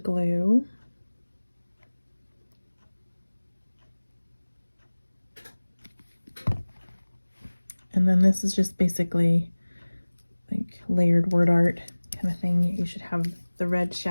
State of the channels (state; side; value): inverted; both; correlation -1.00